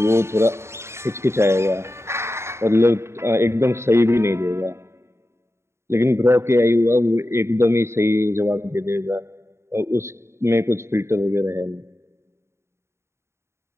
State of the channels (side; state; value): left; late; 0.13 ms